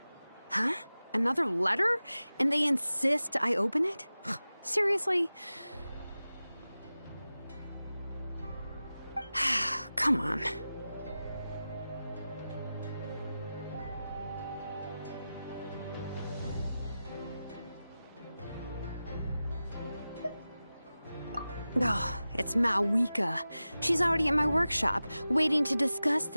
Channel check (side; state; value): both; inverted; correlation -0.95